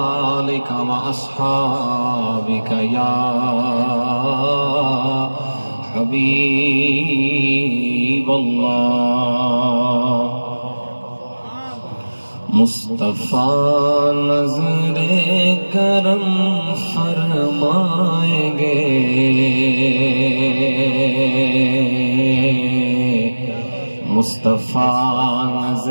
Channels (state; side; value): inverted; both; correlation -1.00